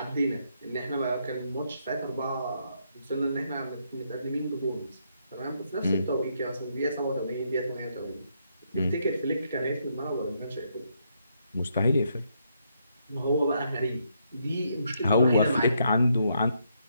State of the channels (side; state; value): both; inverted; correlation -0.76